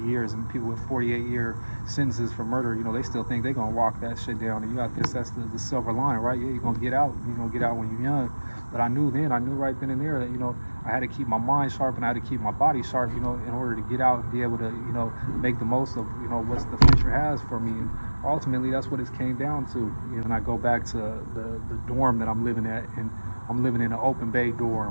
years, and people with 48-year sentences for murder. They still think they're gonna walk that shit down. And that's the silver lining, right? Yeah, you're gonna get out. You're gonna get out when you're young. But I knew right then and there that I had to keep my mind sharp, and I had to keep my body sharp, in order to get out and be able to make the most of what the future has for me. And ultimately that's what it came down to. And I go back to the dorm that I'm living at, and I'm living in an open bay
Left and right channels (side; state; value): both; inverted; correlation -1.00